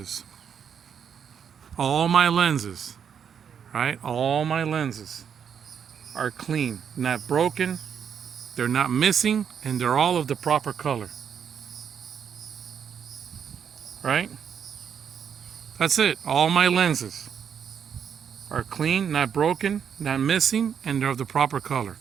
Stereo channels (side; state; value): left; quieter; 7.7 dB